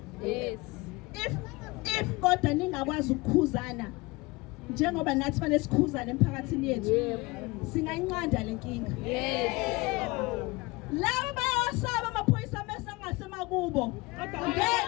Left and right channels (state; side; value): quieter; right; 23.5 dB